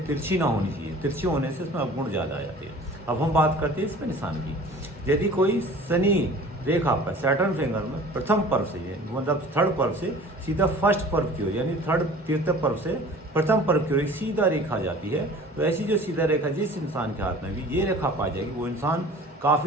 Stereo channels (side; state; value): both; normal; correlation 0.45